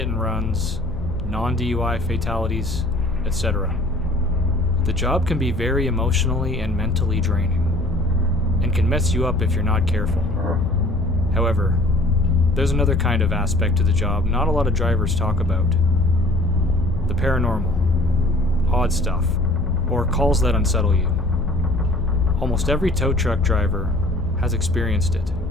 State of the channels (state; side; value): noise; left; hum, 9 dB below the sound